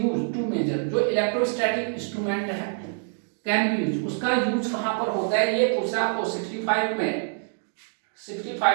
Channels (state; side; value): silent; left; 61 dB below the other